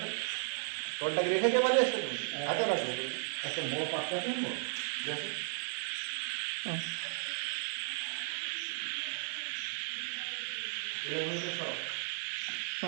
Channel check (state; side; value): silent; left; 54 dB below the other